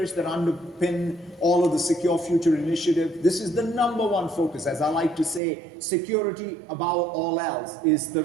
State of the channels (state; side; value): drops out; left; at 5.4 s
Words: that underpin all of the Secure Future Initiative. This is the number one focus. As I like to say, security above all else is the